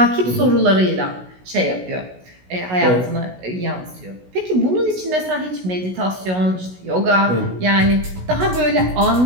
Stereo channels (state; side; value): late; left; 16 ms